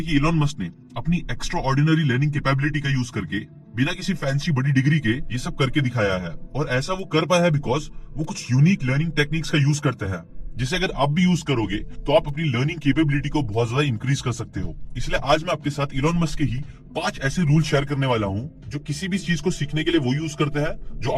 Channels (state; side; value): identical; both; correlation 1.00